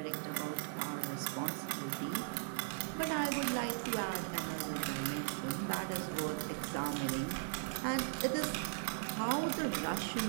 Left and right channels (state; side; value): silent; left; digital silence